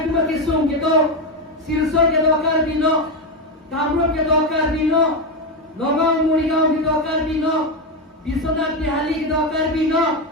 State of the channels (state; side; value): normal; both; correlation 0.10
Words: tu mati sung ke do silsor ke do karbi no kamrup ke do karbi no nogong murigaon ke do karbi no Biswanath Bihali ke do karbi no